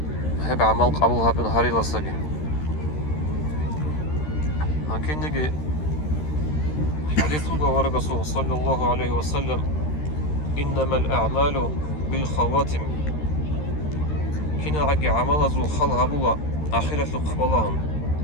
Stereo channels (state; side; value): late; right; 13 ms